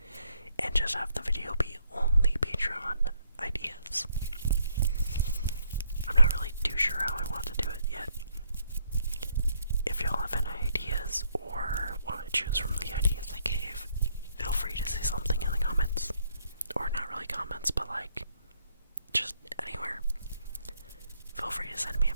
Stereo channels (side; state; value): both; inverted; correlation -0.71